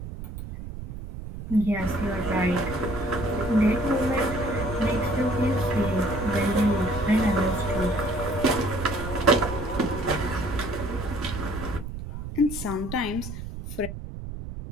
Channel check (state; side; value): noise; right; rumble, 9 dB below the sound